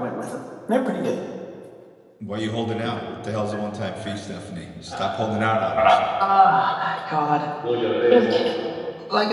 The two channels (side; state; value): both; identical; correlation 1.00